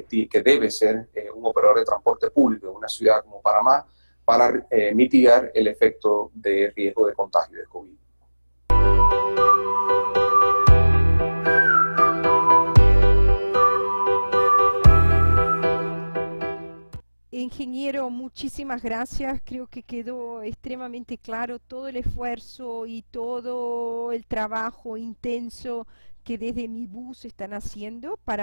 debe ser un operador de transporte público en una ciudad como Panamá para mitigar el efecto de riesgo de contagio de COVID. Ingeniero, muchísimas gracias. Creo que quedó extremadamente claro todo el esfuerzo y todo el trabajo intenso que desde Mi Bus están haciendo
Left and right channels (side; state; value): both; inverted; correlation -1.00